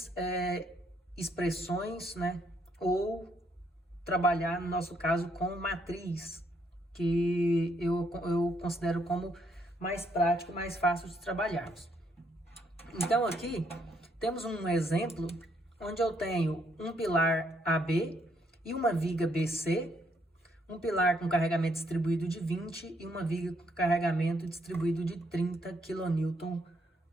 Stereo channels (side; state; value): both; normal; correlation 0.72